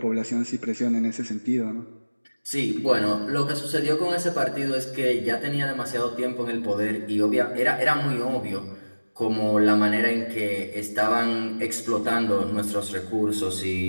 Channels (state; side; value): inverted; both; correlation -1.00